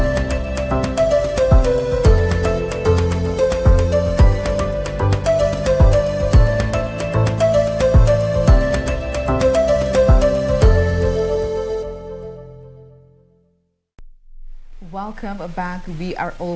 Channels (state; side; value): identical; both; correlation 1.00